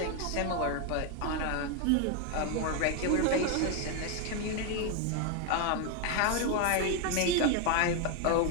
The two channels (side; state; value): both; different; correlation 0.01